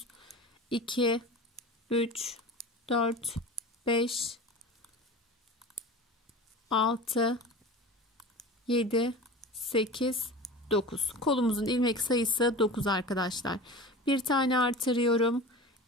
2, 3, 4, 5, 6, 7, 8, 9. Kolumuzun ilmek sayısı 9 arkadaşlar. Bir tane artırıyorum.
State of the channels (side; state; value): both; normal; correlation 0.34